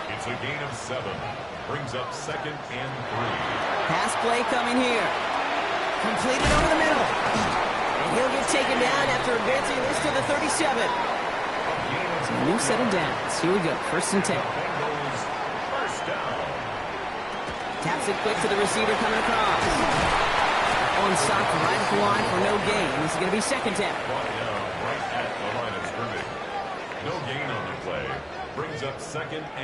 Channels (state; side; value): identical; both; correlation 1.00